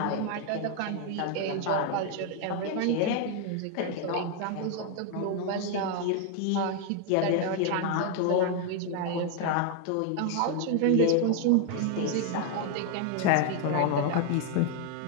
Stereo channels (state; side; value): different; both; correlation 0.00